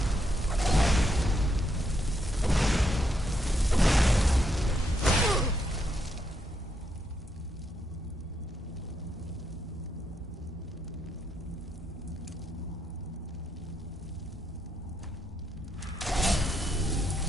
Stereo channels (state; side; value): normal; both; correlation 0.78